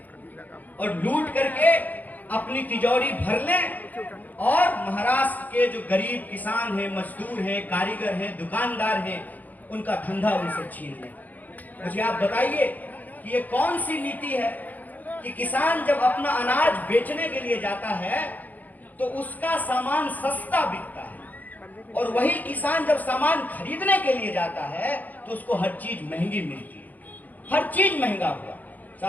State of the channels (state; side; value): late; right; 0.082 ms